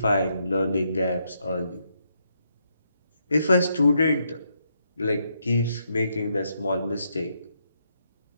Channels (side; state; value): both; inverted; correlation -0.78